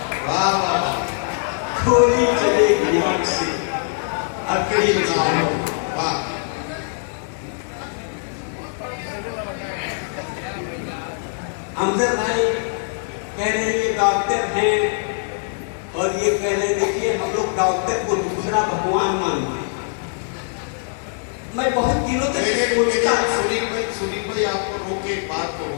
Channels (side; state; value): right; silent; digital silence